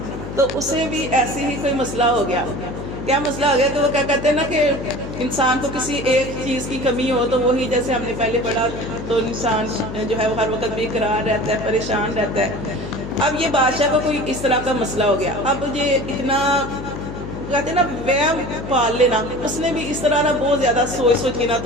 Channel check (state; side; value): noise; left; hum, 9 dB below the sound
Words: تو اسے بھی ایسے ہی کوئی مسئلہ ہو گیا. کیا مسئلہ ہو گیا؟ تو وہ کیا کہتے ہیں نا کہ انسان کو کسی ایک چیز کی کمی ہو تو وہی جیسے ہم نے پہلے پڑھا تو انسان جو ہے وہ ہر وقت بے قرار رہتا ہے، پریشان رہتا ہے. اب یہ بادشاہ کو کوئی اس طرح کا مسئلہ ہو گیا. اب یہ اتنا کہتے ہیں نا وہم پال لینا، اس نے بھی اس طرح نا بہت زیادہ سوچ کے نا